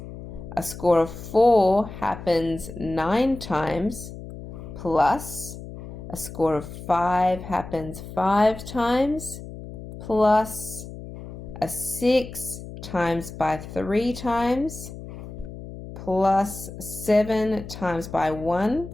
a score of 4 happens 9 times plus a score of 5 happens 5 times plus a 6 times by 3 times plus 7 times by 1.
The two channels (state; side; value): noise; left; hum, 12 dB below the sound